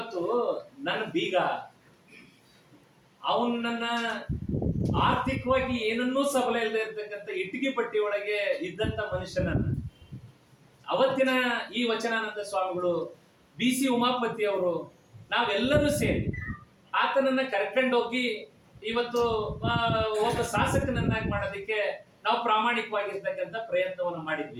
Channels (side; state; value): both; identical; correlation 1.00